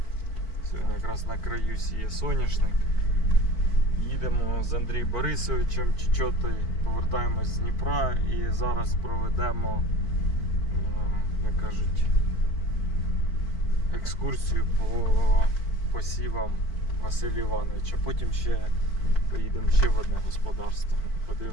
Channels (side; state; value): right; late; 4.5 ms